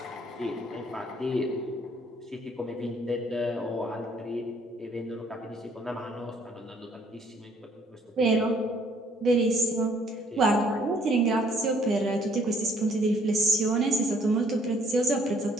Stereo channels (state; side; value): normal; both; correlation 0.63